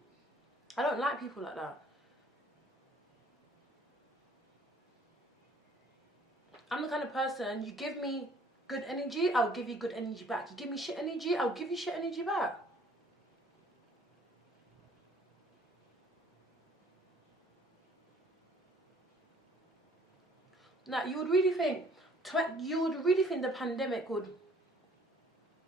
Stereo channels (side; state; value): both; normal; correlation 0.57